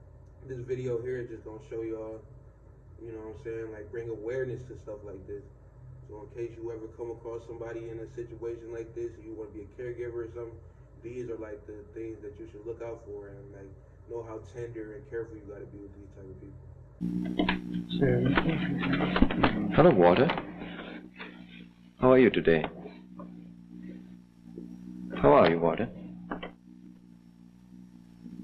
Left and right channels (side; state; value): both; identical; correlation 1.00